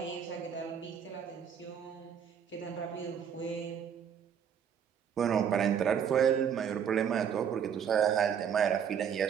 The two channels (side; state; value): left; quieter; 8.0 dB